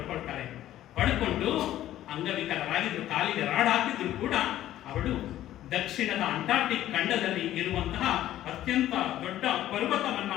ಪಡ್ಕೊಂಡು ಅಂಗವಿಕಲರಾಗಿದ್ರು, ಕಾಲಿಗೆ ರಾಡ್ ಹಾಕಿದ್ರು ಕೂಡ ಅವಳು ದಕ್ಷಿಣದ ಅಂಟಾರ್ಟಿಕ್ ಖಂಡದಲ್ಲಿ ಇರುವಂತಹ ಅತ್ಯಂತ ದೊಡ್ಡ ಪರ್ವತವನ್ನ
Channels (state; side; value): quieter; right; 13.2 dB